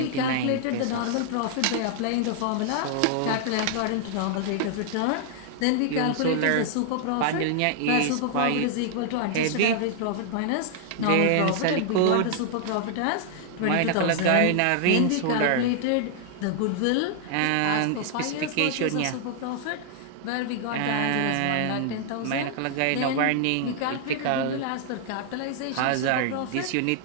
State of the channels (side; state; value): both; different; correlation -0.01